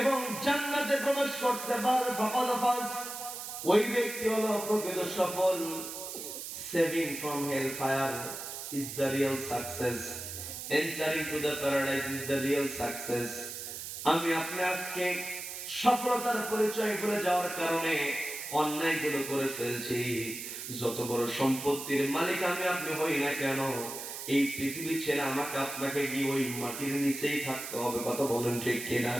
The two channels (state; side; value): noise; right; hiss, 8 dB below the sound